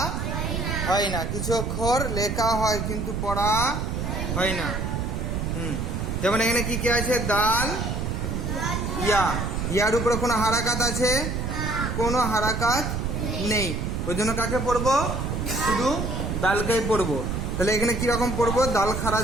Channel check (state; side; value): noise; right; rumble, 2 dB below the sound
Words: হয় না। কিছু অক্ষর লেখা হয় কিন্তু পড়া হয় না। যেমন এখানে কি কি আছে? দাল, ইয়া। ইয়ার উপরে কোনো হারাকাত আছে? কোনো হারাকাত নেই। ওই জন্য কাকে পড়বো? শুধু দালকেই পড়বো। তাহলে এখানে কিরকম পড়বো? দাল খারাজ